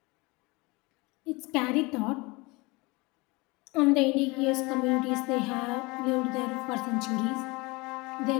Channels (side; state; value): right; quieter; 25.0 dB